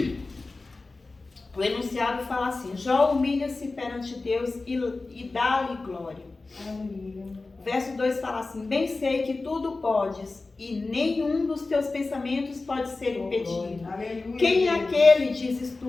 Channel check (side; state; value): right; quieter; 3.5 dB